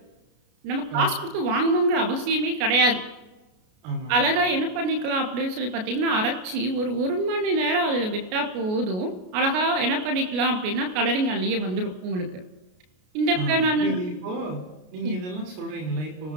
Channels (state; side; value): late; left; 33 ms